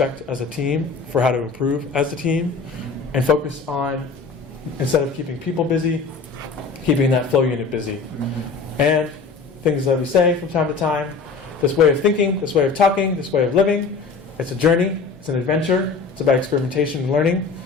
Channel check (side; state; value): right; quieter; 4.6 dB